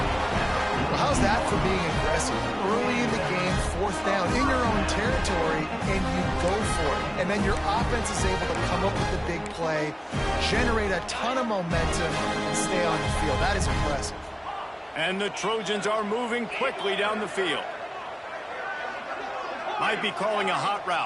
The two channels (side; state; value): both; identical; correlation 1.00